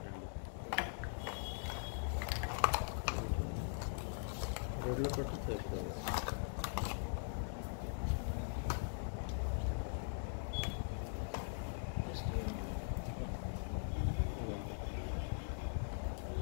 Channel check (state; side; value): silent; right; digital silence